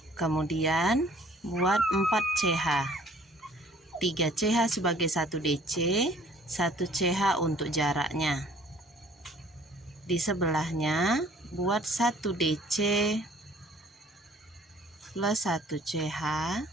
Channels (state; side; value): normal; both; correlation 0.55